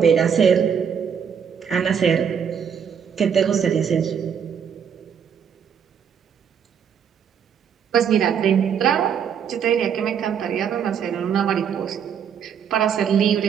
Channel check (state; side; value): quieter; left; 7.7 dB